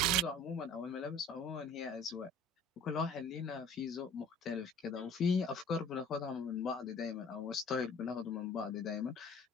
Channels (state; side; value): normal; both; correlation 0.48